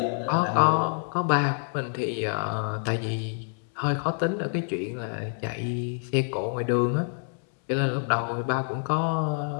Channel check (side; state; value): right; silent; digital silence